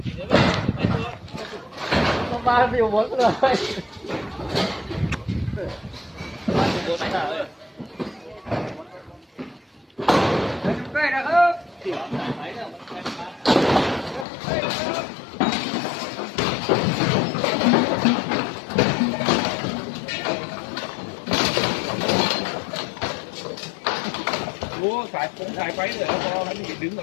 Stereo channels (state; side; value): drops out; right; at 14.2 s